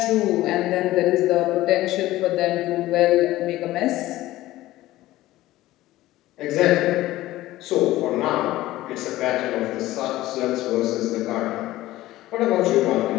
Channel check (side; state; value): right; quieter; 16.3 dB